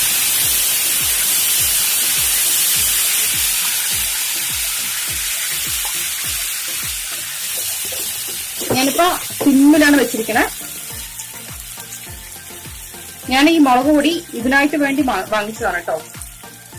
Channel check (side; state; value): both; identical; correlation 1.00